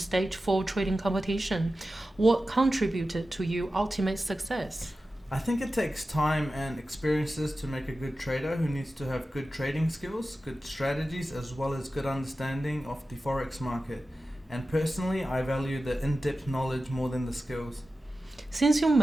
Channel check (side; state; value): both; normal; correlation 0.94